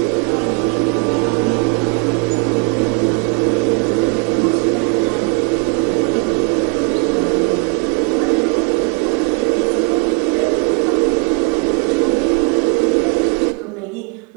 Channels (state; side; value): quieter; left; 30.9 dB